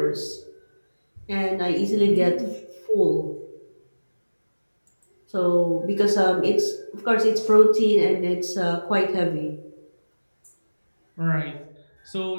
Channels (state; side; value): inverted; both; correlation -1.00